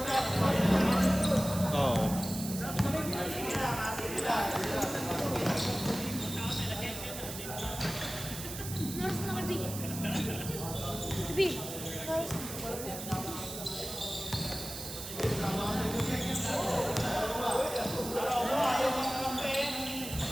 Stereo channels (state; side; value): noise; right; hiss, 8 dB below the sound